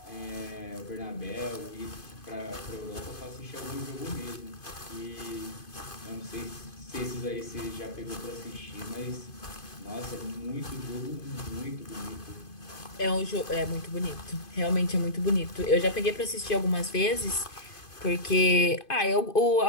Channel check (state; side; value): late; right; 2.5 ms